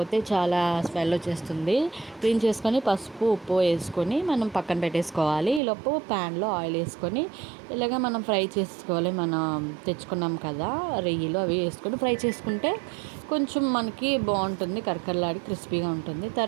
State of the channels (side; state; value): left; drops out; at 5.6 s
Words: చాలా స్మెల్ వచ్చేస్తుంది. క్లీన్ చేసుకొని పసుపు ఉప్పు వేసుకొని మనం పక్కన పెట్టేసుకోవాలి. ఈలోపు ప్యాన్లో ఆయిల్ వేసుకొని ఇలాగ మనం ఫ్రై చేసుకోవాలి. మనం తెచ్చుకున్నాం కదా రొయ్యలు, అవి వేసుకొని ఫ్రై చేసుకుంటే కొంచెం మనకి బాగుంటుంది, కరకరలాడి క్రిస్పీగా ఉంటుంది.